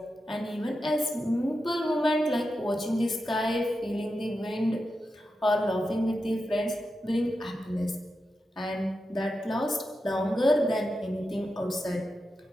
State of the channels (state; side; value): normal; both; correlation 0.89